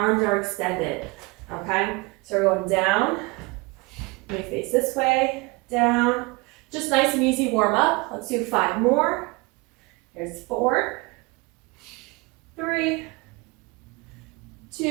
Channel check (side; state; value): left; quieter; 25.8 dB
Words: are extended, okay? So we're going down, let me face this way, down. Just nice and easy warm up. Let's do 5 more. Here's 4, 3,